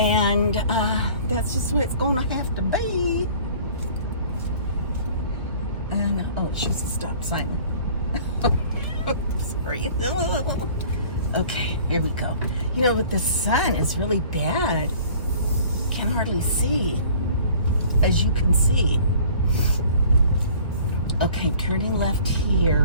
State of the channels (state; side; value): inverted; both; correlation -0.50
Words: that's just what it's going to have to be. And, oh, it shows a stop sign. Sorry. Okay, here we go. You know, with the sun, it's really bad. Can hardly see, as you can see. Okay, I'm turning left